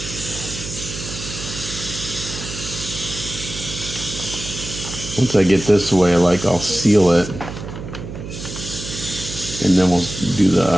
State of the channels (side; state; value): right; noise; hum, 9 dB below the sound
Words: Once I get this way, I'll seal it, and then we'll do